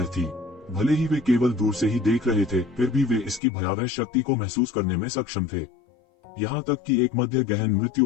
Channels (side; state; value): right; drops out; at 3.4 s